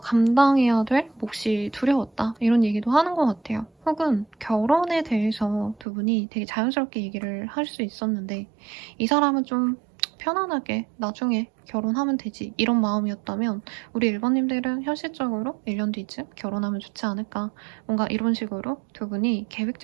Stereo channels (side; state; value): left; drops out; at 5.9 s